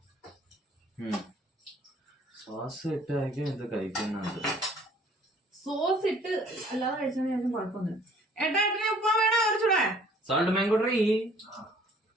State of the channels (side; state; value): both; normal; correlation 0.56